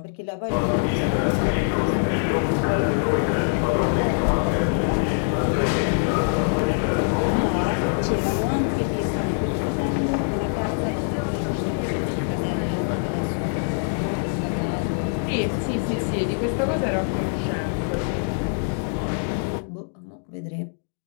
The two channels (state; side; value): silent; right; digital silence